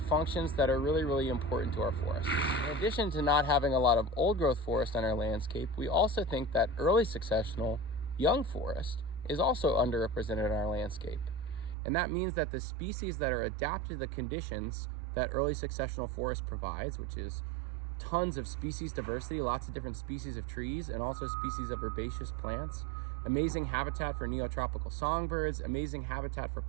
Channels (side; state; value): left; drops out; at 11.8 s